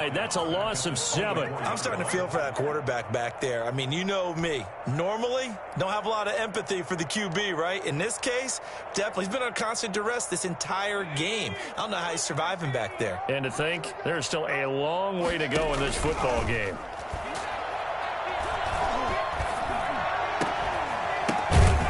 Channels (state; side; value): identical; both; correlation 1.00